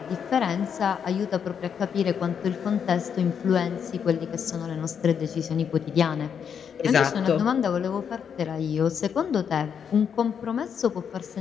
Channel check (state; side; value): quieter; right; 7.4 dB